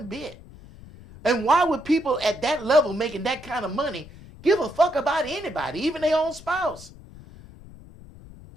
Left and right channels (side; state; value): left; noise; rumble, 19 dB below the sound